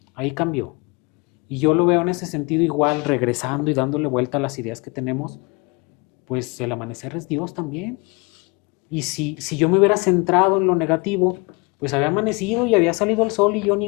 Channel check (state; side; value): quieter; right; 28.6 dB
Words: ahí cambió. Y yo lo veo en ese sentido igual, regresando y dándole vuelta a las ideas que tenemos, pues el amanecer es Dios también. Y si yo me hubiera centrado en lo negativo, pues había amanecido y había salido el sol y yo ni